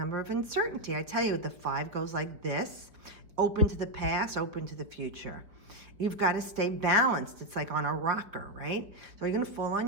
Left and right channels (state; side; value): late; left; 5.0 ms